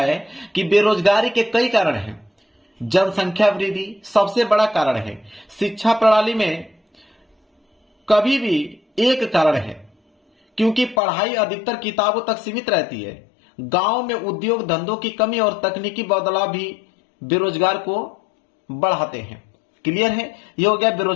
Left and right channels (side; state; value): right; drops out; at 11.0 s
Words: कि बेरोजगारी के कई कारण हैं। जनसंख्या वृद्धि सबसे बड़ा कारण है, शिक्षा प्रणाली में कभी भी एक कारण है, क्योंकि पढ़ाई अधिकतर किताबों तक सीमित रहती है। गांव में उद्योग धंधों की कमी और तकनीकी बदलाव भी बेरोजगार को बढ़ाते हैं। क्लियर है, ये हो गया